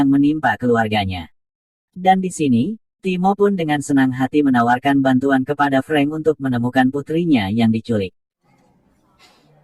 menimpa keluarganya. Dan di sini, Timo pun dengan senang hati menawarkan bantuan kepada Frank untuk menemukan putrinya yang diculik.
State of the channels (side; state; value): both; identical; correlation 1.00